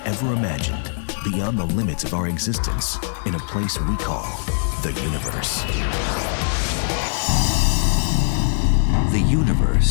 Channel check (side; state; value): right; silent; 65 dB below the other